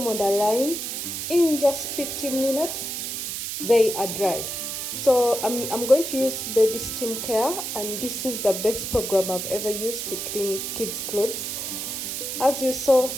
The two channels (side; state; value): right; noise; hiss, 4 dB below the sound